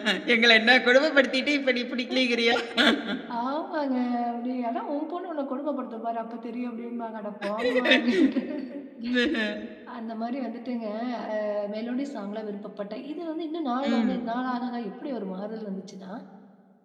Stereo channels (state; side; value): identical; both; correlation 1.00